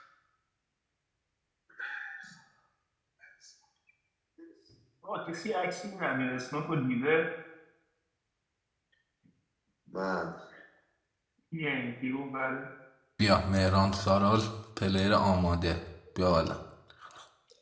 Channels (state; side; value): identical; both; correlation 1.00